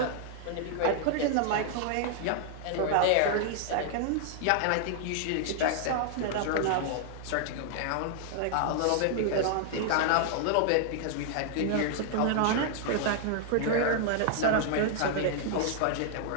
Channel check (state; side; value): different; both; correlation -0.01